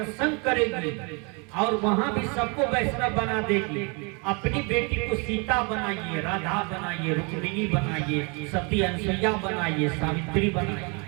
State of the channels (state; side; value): quieter; left; 32.6 dB